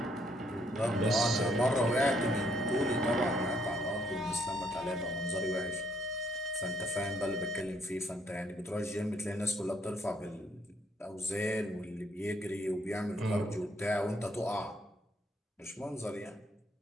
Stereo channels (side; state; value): both; normal; correlation 0.70